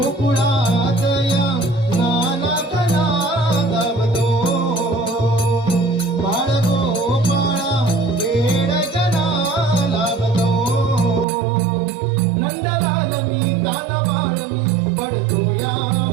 या नानात नादावतो बाळ गोपाळा वेड जना लावतो नंदलाल मी कानबाळ मी पडतो या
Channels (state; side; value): drops out; left; at 11.2 s